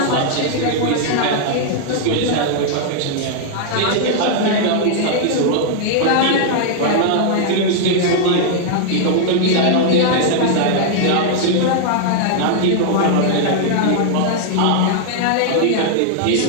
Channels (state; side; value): different; both; correlation 0.00